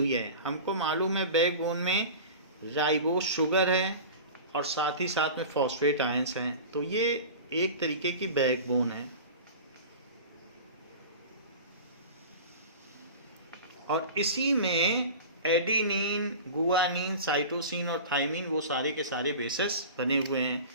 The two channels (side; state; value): both; inverted; correlation -0.34